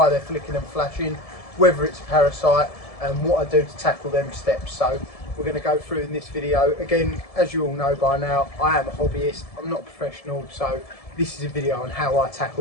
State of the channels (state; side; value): late; right; 1.7 ms